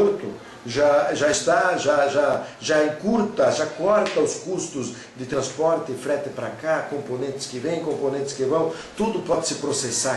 já encurta, já corta os custos de transporte e frete para cá, componentes que vêm, componentes que vão, tudo pode se processar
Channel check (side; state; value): both; identical; correlation 1.00